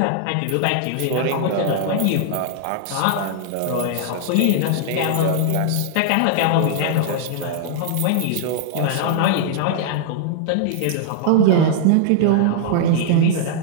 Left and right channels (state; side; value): different; both; correlation -0.01